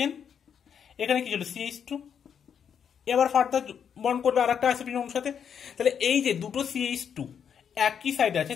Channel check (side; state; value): right; quieter; 7.7 dB